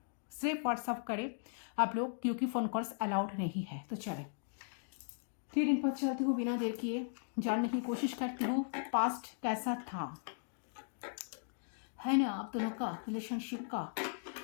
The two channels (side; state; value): right; silent; digital silence